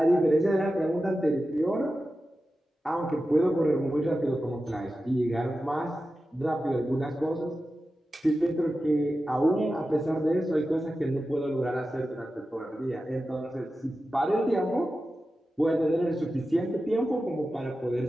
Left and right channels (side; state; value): both; normal; correlation 0.93